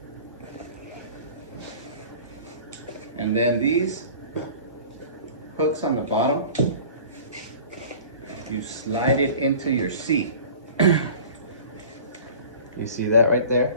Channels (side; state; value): both; inverted; correlation -0.43